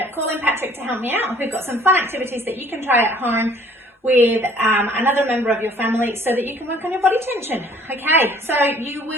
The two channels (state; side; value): normal; both; correlation 0.56